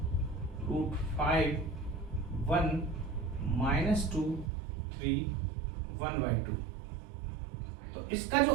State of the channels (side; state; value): left; drops out; at 4.5 s